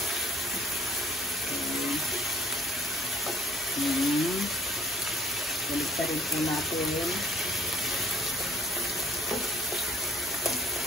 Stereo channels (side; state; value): both; normal; correlation 0.57